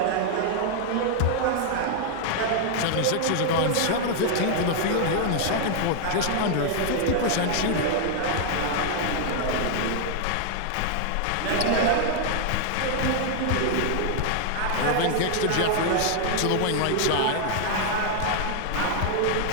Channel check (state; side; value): different; both; correlation 0.00